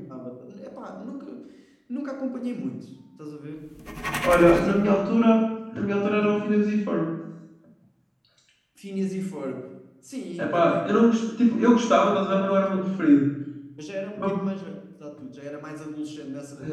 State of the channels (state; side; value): identical; both; correlation 1.00